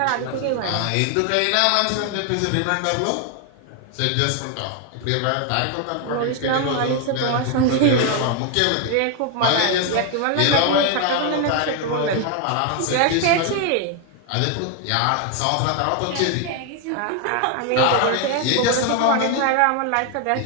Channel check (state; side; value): different; both; correlation 0.01